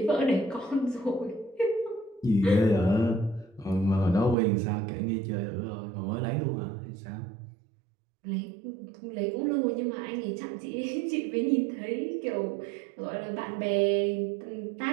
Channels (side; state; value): left; drops out; at 4.4 s